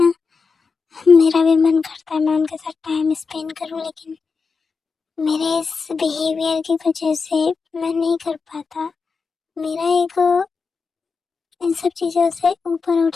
मेरा भी मन करता है मैं उनके साथ टाइम स्पेंड करूं, लेकिन मेरे इस बिहेवियर की वजह से मैं नहीं कर पाता। मेरा ईगो इन सब चीज़ों से ऊपर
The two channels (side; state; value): right; quieter; 4.9 dB